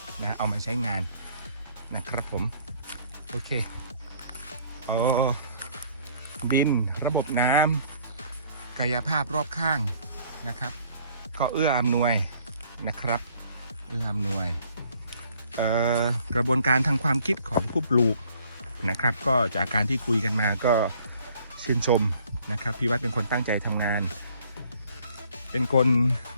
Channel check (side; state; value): both; inverted; correlation -0.60